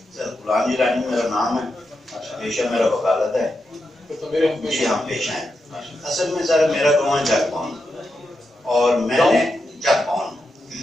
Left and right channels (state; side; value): normal; both; correlation 0.87